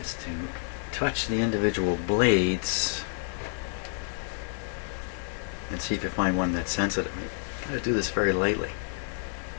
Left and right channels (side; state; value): right; silent; 59 dB below the other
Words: to touch the individual blades and see if you find one that's sensitive. You gotta do this very lightly.